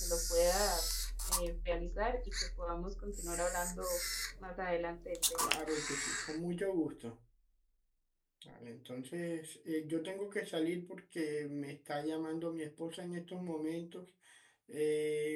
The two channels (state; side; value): identical; both; correlation 1.00